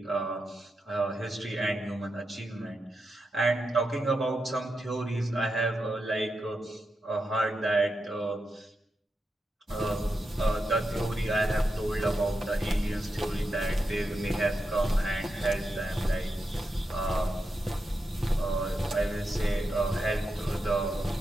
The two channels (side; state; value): both; normal; correlation 0.87